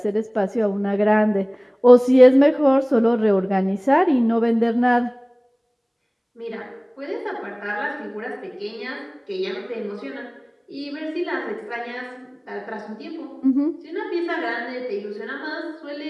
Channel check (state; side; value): identical; both; correlation 1.00